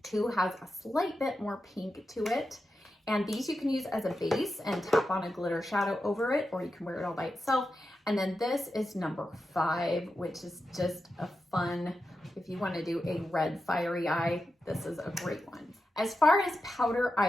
2 has a slight bit more pink to it, and these you can use as a base and tap on a glitter shadow over it, or you can wear it all by itself. And then this is number 5, which is just a fun, if you want to do a red fiery eye, this is a great one. As far as powder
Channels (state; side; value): normal; both; correlation 0.90